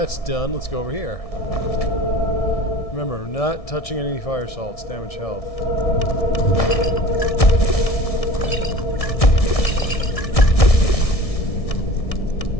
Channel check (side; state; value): right; late; 1.6 ms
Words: done, let's go over here. Remember, not touching any fire salts, damage health.